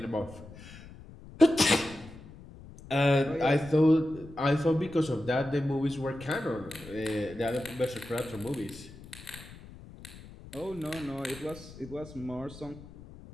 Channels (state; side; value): noise; left; rumble, 17 dB below the sound